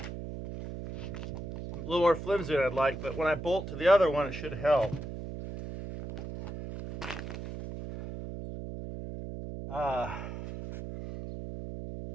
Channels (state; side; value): noise; right; hum, 8 dB below the sound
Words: A little more flimsy than I'd like, but when I bolt to the other one, it should help. Of